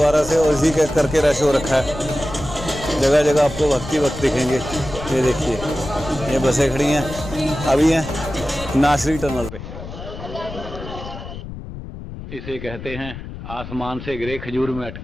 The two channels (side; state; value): left; noise; rumble, 11 dB below the sound